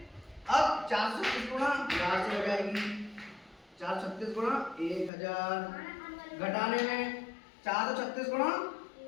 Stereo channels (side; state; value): right; drops out; at 5.1 s